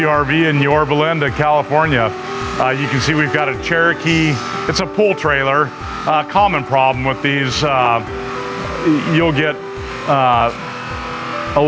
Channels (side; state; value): both; identical; correlation 1.00